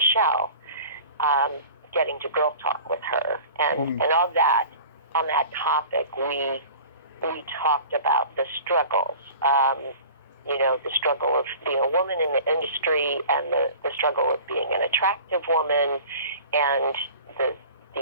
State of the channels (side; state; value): both; inverted; correlation -0.42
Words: getting to girl talk with her, and on that topic we talked about the struggles, the struggle of being a woman in the industry, and the struggle of being an attractive woman, and